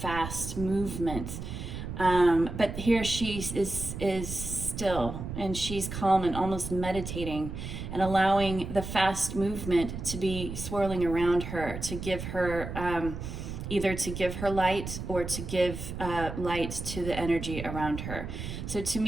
movement. But here she is still, and she's calm and almost meditating and allowing the fast movement to be swirling around her, to give her either to give her light or to give light to the energy around her. So to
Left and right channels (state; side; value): noise; right; rumble, 7 dB below the sound